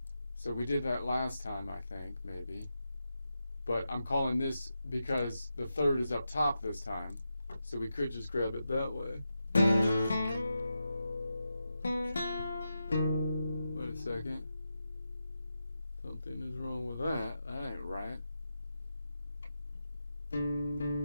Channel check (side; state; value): both; inverted; correlation -0.89